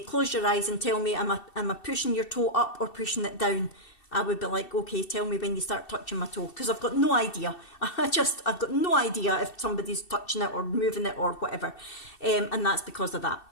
your eyes and tell me, am I pushing your toe up or pushing it down? I would be like, okay, tell me when you start touching my toe, because I've got no idea. I've got no idea if somebody's touching it or moving it or whatever. And that's because of that.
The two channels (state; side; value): late; right; 2.7 ms